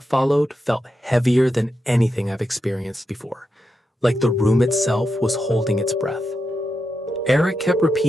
followed felt heavier than anything I've experienced before, like the room itself was holding its breath. Eric kept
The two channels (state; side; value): normal; both; correlation 0.87